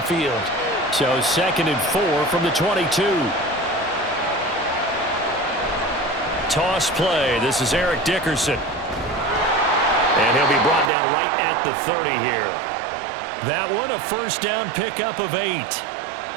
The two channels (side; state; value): left; drops out; at 10.9 s